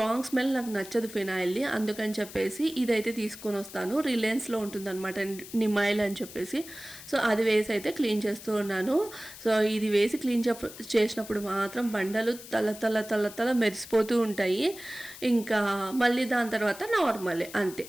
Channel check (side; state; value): left; noise; hiss, 15 dB below the sound